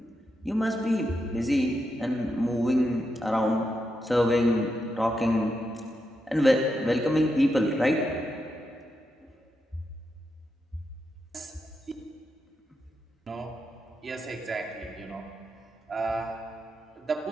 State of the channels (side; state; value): both; normal; correlation 0.84